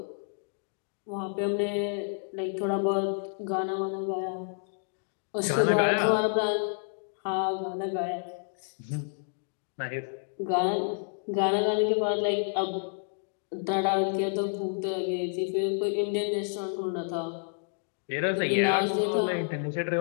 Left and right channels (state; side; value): silent; right; digital silence